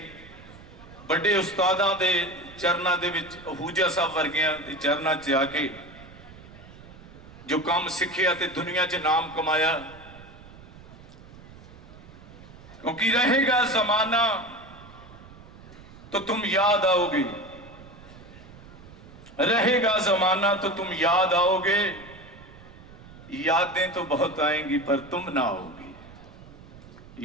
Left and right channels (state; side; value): noise; right; rumble, 19 dB below the sound